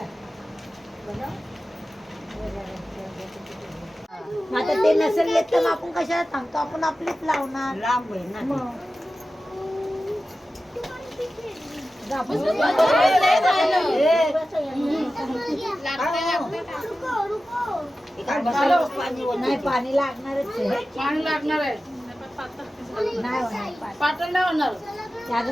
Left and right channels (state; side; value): normal; both; correlation 0.94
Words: आता ते नसेल येत तर आपण कशाला सांगतो, आपण आपलीच लावणार. लांब आहे ना नाही पाणी लागणारच आहे. पाणी लागणार आहे. नाही होणार पातळ नाही होणार. ते